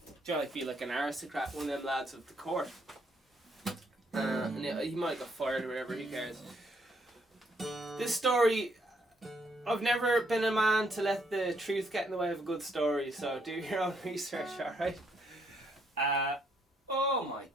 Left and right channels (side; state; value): both; normal; correlation 0.72